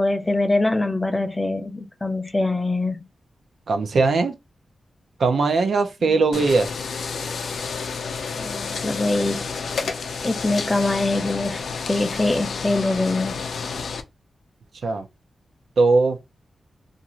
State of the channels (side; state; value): both; normal; correlation 0.88